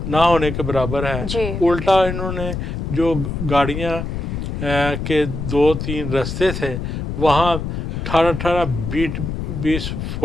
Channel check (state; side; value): noise; left; rumble, 4 dB below the sound